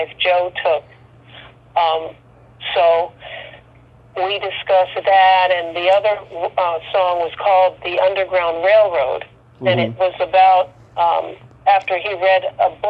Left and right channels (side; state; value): both; identical; correlation 1.00